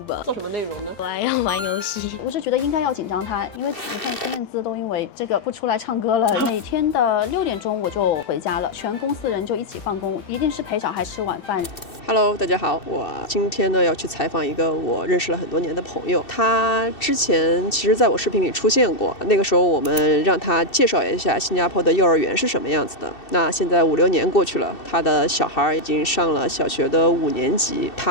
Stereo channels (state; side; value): late; right; 2.7 ms